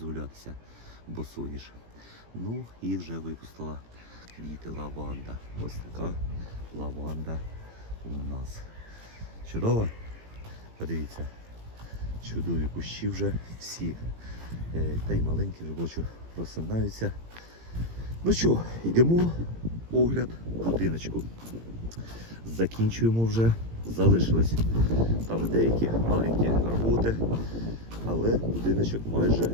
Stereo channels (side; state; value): left; late; 18 ms